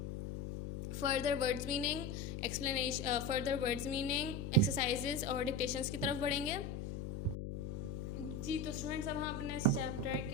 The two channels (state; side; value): noise; left; hum, 5 dB below the sound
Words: फर्दर वर्ड्स मीनिंग एक्सरसाइजेज और डिक्टेशंस की तरफ बढ़ेंगे। जी, तो स्टूडेंट्स अब हम अपने इस चैप्टर